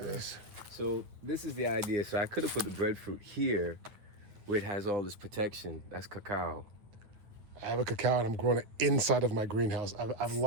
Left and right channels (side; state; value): left; late; 9.2 ms